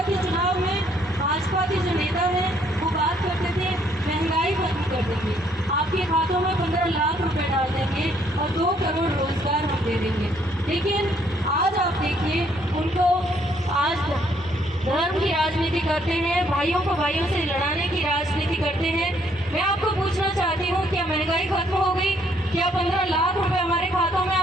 के चुनाव में भाजपा के जो नेता हैं वो बात करते थे महंगाई खत्म कर देंगे, आपके खातों में 15 लाख रुपए डाल देंगे और 2 करोड़ रोजगार हम दे देंगे। लेकिन आज आप देखिए, उनको आज धर्म की राजनीति करते हैं, भाइयों को भाइयों से लड़ाने की राजनीति करते हैं। मैं आपको पूछना चाहती हूँ, क्या महंगाई खत्म हो गई? क्या 15 लाख रुपए हमारे खातों में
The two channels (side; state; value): both; normal; correlation 0.67